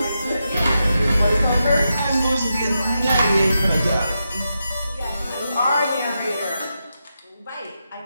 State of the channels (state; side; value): inverted; both; correlation -0.87